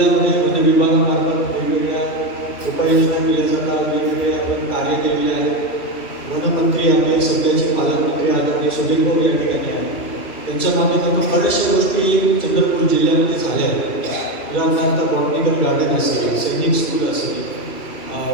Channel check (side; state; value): right; late; 2.7 ms